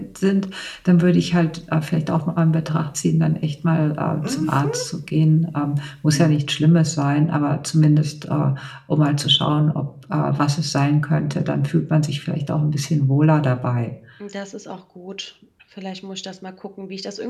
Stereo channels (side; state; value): both; identical; correlation 1.00